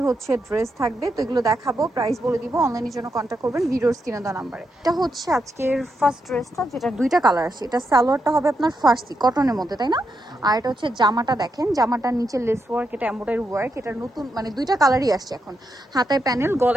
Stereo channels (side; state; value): both; normal; correlation 0.83